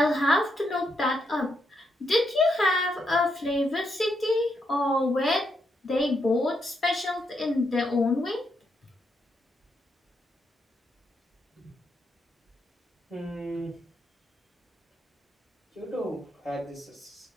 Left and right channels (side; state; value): both; normal; correlation 0.80